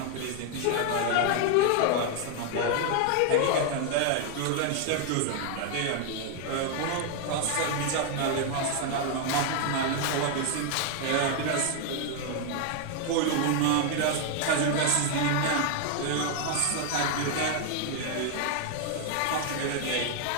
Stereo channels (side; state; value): both; different; correlation 0.00